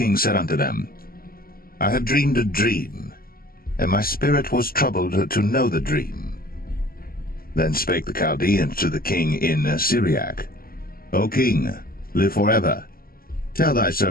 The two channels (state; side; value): late; right; 0.43 ms